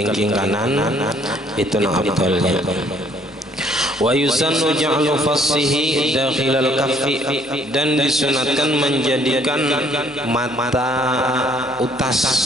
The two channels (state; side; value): normal; both; correlation 0.62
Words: kanan itu nang afdalnya. Wa yusannu ja'lu fassihi dakhilal kaffi, dan disunatkan menjadikan mata utas